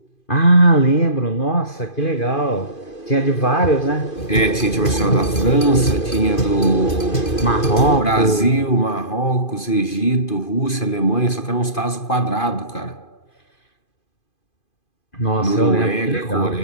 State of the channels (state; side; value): late; right; 2.5 ms